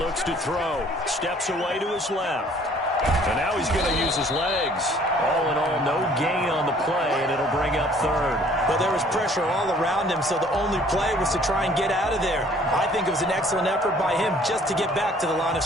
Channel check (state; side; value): normal; both; correlation 0.56